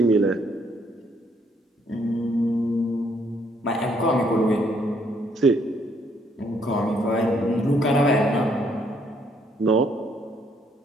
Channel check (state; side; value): normal; both; correlation 0.69